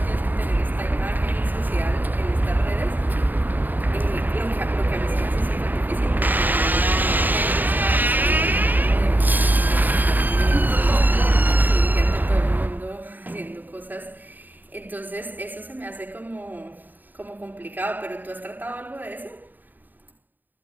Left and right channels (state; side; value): late; left; 0.088 ms